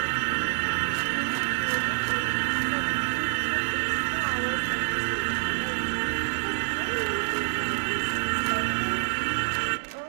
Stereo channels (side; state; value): left; silent; digital silence